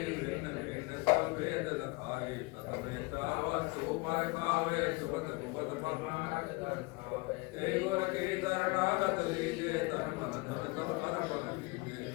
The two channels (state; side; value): quieter; right; 25.4 dB